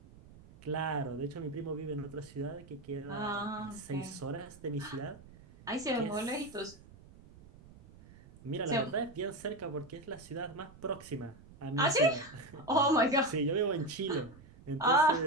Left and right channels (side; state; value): right; noise; rumble, 21 dB below the sound